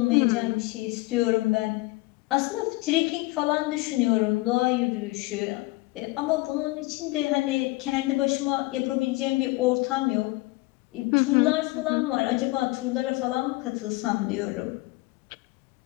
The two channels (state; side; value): quieter; right; 22.3 dB